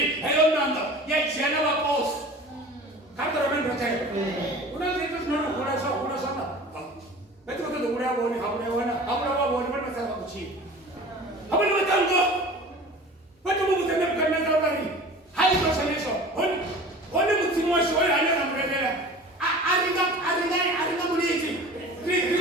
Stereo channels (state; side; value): normal; both; correlation 0.40